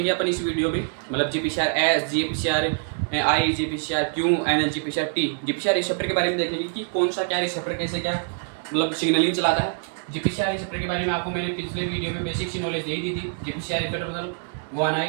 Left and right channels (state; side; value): silent; left; 60 dB below the other